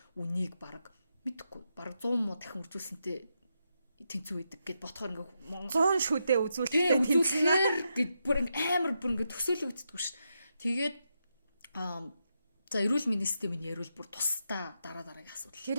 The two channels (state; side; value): inverted; both; correlation -0.84